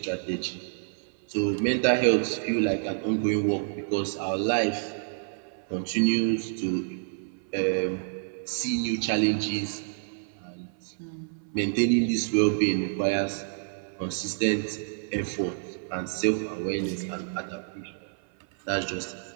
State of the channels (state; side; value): silent; left; 57 dB below the other